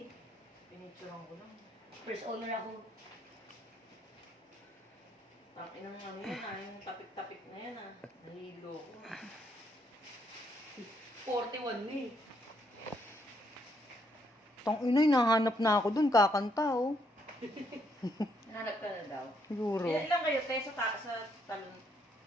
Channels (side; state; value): both; normal; correlation 0.73